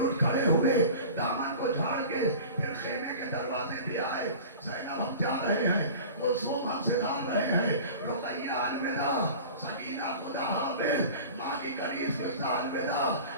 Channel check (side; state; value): both; inverted; correlation -0.38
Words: اٹھ کھڑے ہوئے، دامن کو جھاڑ کے پھر خیمے کے دروازے بھی آئے، زینب ہم جا رہے ہیں، کلثوم ہم سدھار رہے ہیں، رقیہ الوداع، سکینہ خدا حافظ، ماں کی کنیز قصہ الوداع،